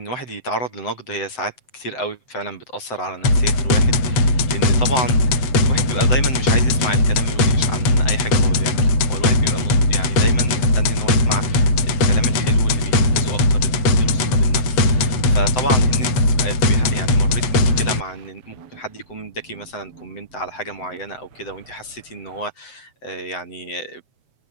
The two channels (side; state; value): right; late; 8.1 ms